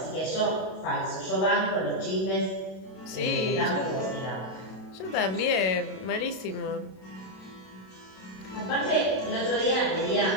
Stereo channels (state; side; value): late; right; 32 ms